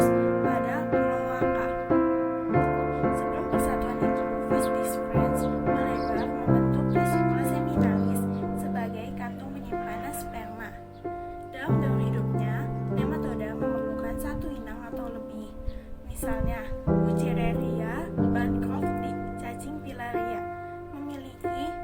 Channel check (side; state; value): both; identical; correlation 1.00